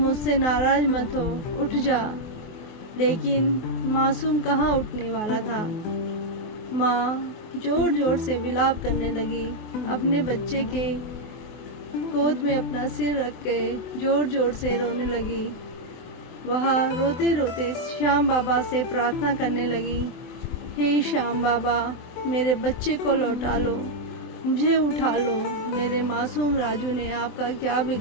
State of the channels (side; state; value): right; late; 24 ms